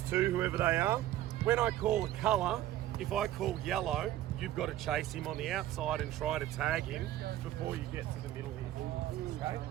two, whoever they are. When I call a colour, if I call yellow, you've got to chase him on the outside and try to tag him before you get to the middle. Okay?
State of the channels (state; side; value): quieter; left; 13.5 dB